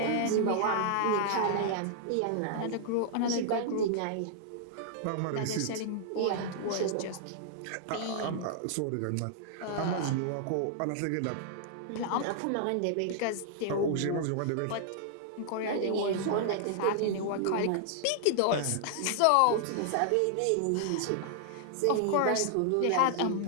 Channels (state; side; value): different; both; correlation -0.01